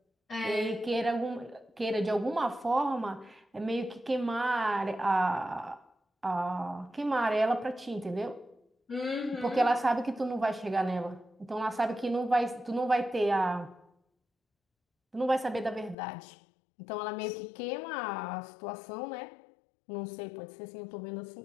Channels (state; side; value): drops out; right; at 16.0 s